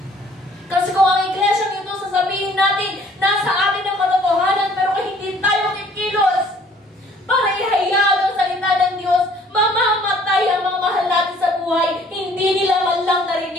Kasi kung ang iglesia nito, sasabihin natin, nasa atin ang katotohanan, pero hindi tayo kikilos para ihayag ang salita ng Diyos, mamamatay ang mga mahal natin sa buhay, hindi nila man lang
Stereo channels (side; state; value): both; normal; correlation 0.57